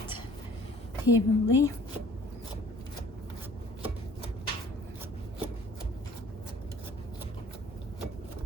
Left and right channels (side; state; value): both; normal; correlation 0.52